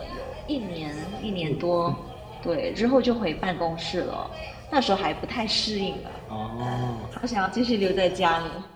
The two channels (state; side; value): identical; both; correlation 1.00